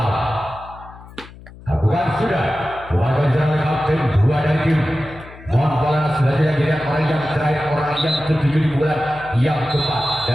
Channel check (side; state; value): left; noise; hum, 19 dB below the sound